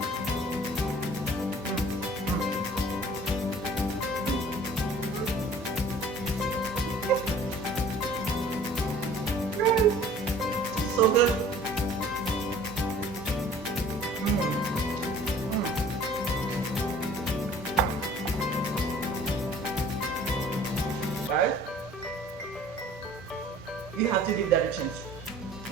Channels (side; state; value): both; normal; correlation 0.50